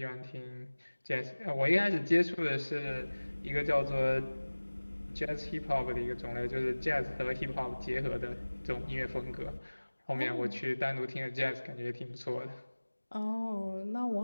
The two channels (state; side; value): inverted; both; correlation -1.00